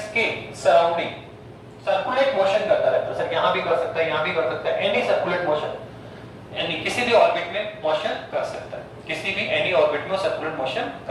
के सराउंडिंग सर्कुलेट मोशन करता रहता है। सर यहाँ भी कर सकता है, यहाँ भी कर सकता है, एनी सर्कुलेट मोशन, यानी किसी भी ऑर्बिट में मोशन कर सकता है, किसी भी एनी ऑर्बिट में सर्कुलेट मोशन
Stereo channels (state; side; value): identical; both; correlation 1.00